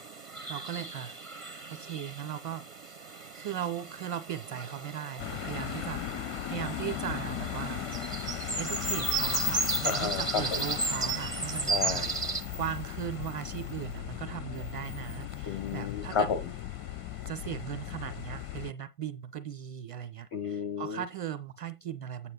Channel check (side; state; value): right; late; 1.5 ms